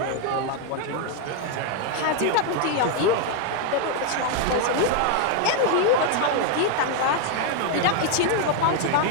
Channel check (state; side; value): different; both; correlation 0.01